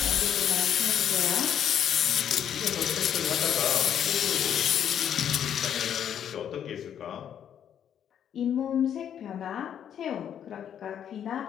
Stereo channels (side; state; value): right; quieter; 9.2 dB